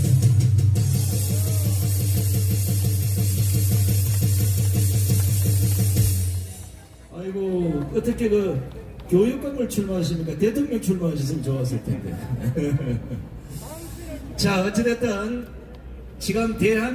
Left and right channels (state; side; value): identical; both; correlation 1.00